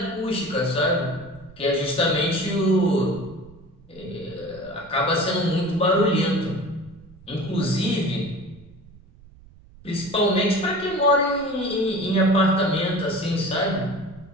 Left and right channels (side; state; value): right; noise; rumble, 23 dB below the sound